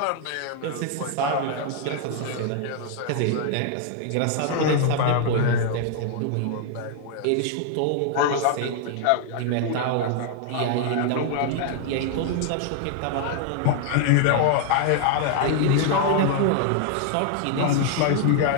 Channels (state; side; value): different; both; correlation 0.00